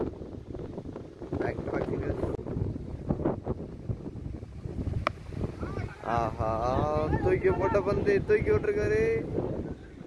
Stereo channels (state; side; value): identical; both; correlation 1.00